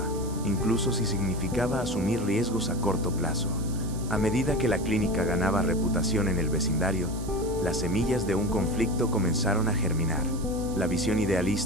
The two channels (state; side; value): noise; right; hiss, 16 dB below the sound